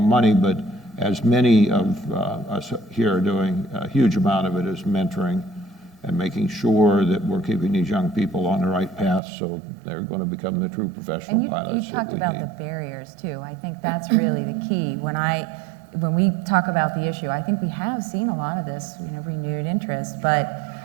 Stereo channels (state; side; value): drops out; left; at 9.2 s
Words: money, but as many of us here are doing, a huge amount of it is mentoring and making sure that we're keeping these young people on the right path so they're going to become the true professional pilots. You talked about the barriers too. I think that's really the key. When we talk about the issue, I think we have seen a lot of this, renewed interest, but